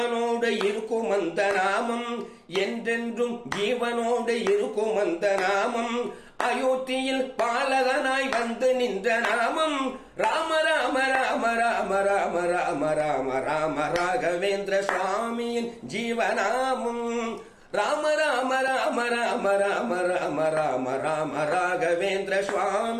இருக்கும் அந்த நாமம், என்றென்றும் ஜீவனோடு இருக்கும் அந்த நாமம். அயோத்தியில் பாலகனாய் வந்து நின்ற நாமம். ராம ராம ராம ராம ராம ராம ராம ராம ராகவேந்திர சுவாமியின் ஜீவநாமம். ராம ராம ராம ராம ராம ராம ராம ராம ராகவேந்திர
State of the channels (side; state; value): both; identical; correlation 1.00